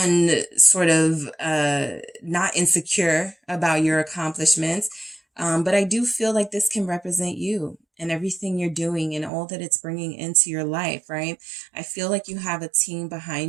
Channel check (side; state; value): left; drops out; at 9.3 s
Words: not insecure about your accomplishments. But I do feel like this can represent you and everything you're doing and all that it's bringing into your life, right? I feel like you have a team